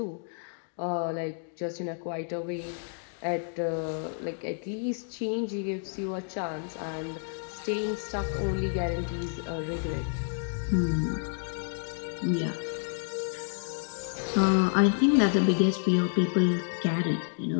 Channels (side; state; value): right; silent; digital silence